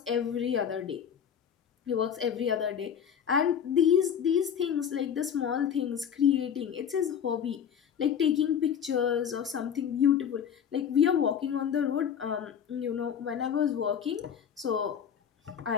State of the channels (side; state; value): right; quieter; 8.2 dB